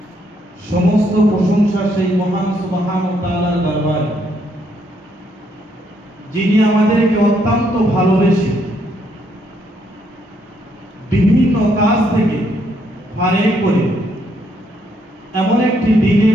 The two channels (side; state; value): both; normal; correlation 0.73